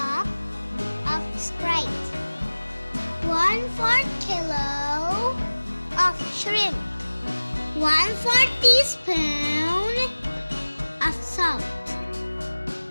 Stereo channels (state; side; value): inverted; both; correlation -1.00